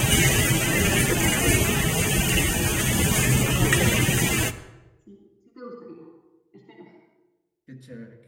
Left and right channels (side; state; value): both; identical; correlation 1.00